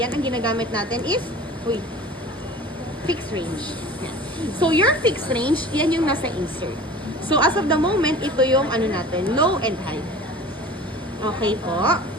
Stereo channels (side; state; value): both; normal; correlation 0.41